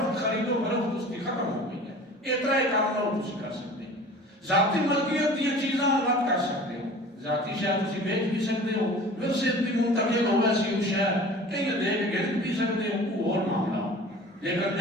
خریدو فروخت اس کی ختم ہو گئی اتنا ہی کام نہ تسی کر سکتے ذاتی ملکیت دی چیزاں مت کر سکتے ہو ذاتی شاید تسی بیچ بھی سکتے ہو ورثے بھی منتقل ہو ویسی ہو شاید کہیں دے کے گرد بھی سکتے ہو وہ اور معاملہ ہو لیکن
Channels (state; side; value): normal; both; correlation 0.42